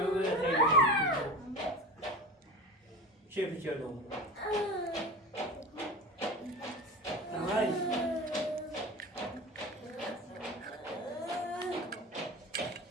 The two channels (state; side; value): normal; both; correlation 0.30